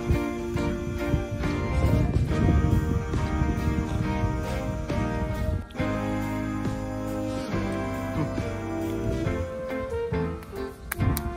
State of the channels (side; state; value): both; identical; correlation 1.00